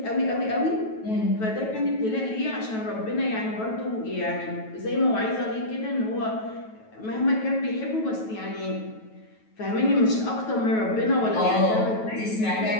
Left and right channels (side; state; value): right; late; 9.2 ms